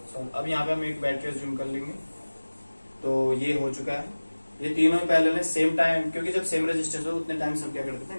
सॉल्व। अब यहाँ पे हम एक बैटरी जूम कर लेंगे। तो ये हो चुका है, ये तीनों पहले ने सेम टाइम, क्योंकि जब सेम रेजिस्टेंस हो उतने टाइम से हम क्या कर देते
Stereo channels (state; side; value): inverted; both; correlation -1.00